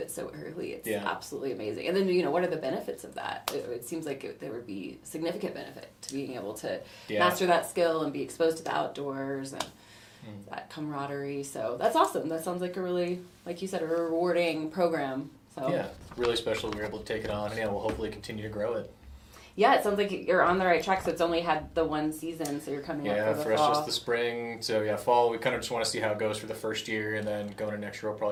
so early. It's absolutely amazing. And then, what are the benefits of that? It seems like there would be significant benefit to being able to master that skill and be exposed to the outdoors. And that camaraderie. So that's awesome. That sounds like a really, like you said, a rewarding program. So yeah, really special we were able to take it on, and we'll hopefully continue to grow it. Yeah, it sounds like you're on the right track. So it's only had the one season, so you're coming up for the for fall. us just the spring. So fall, we kind of just want to see how it goes for the first year, and then going into next year we'll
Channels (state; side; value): identical; both; correlation 1.00